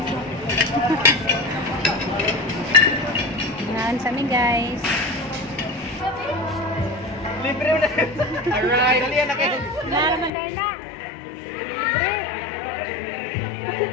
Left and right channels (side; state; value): right; drops out; at 10.3 s